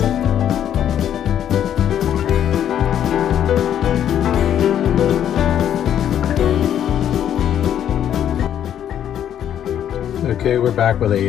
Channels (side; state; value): right; quieter; 10.1 dB